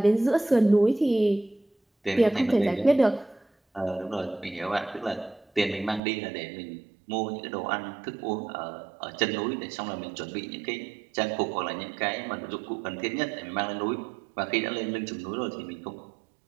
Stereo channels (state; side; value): drops out; left; at 6.0 s